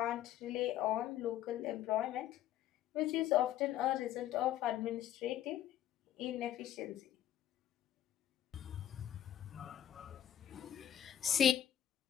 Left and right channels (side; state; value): right; quieter; 11.4 dB